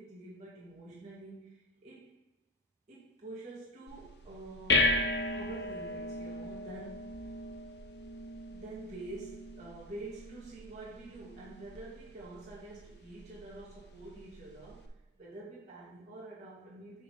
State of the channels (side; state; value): both; normal; correlation 0.17